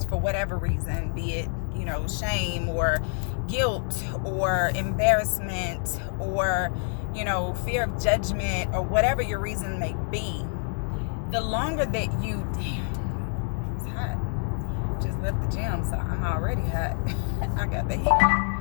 for whatever reason, be it shame or guilt or embarrassment or fear of judgment or whatever your reason may be, the longer that you it's hot. Just left the gym, so I'm already hot. I got the heat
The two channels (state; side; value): silent; right; digital silence